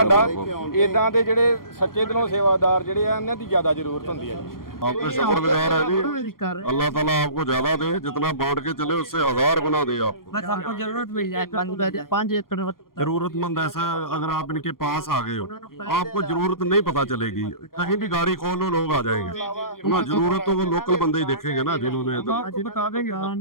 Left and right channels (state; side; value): late; right; 0.92 ms